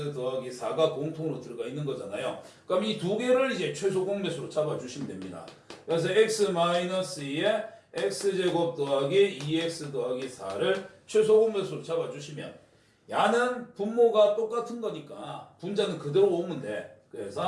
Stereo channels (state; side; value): identical; both; correlation 1.00